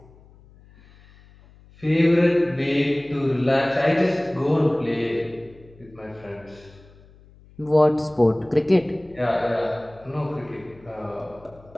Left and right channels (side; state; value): left; noise; hum, 25 dB below the sound